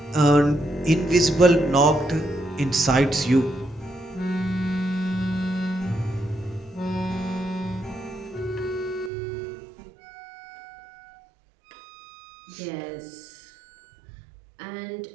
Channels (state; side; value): drops out; left; at 9.1 s